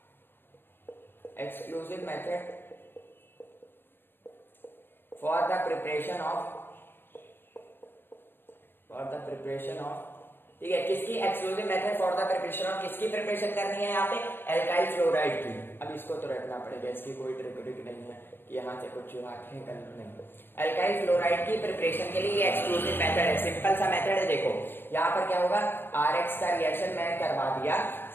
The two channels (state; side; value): late; right; 0.10 ms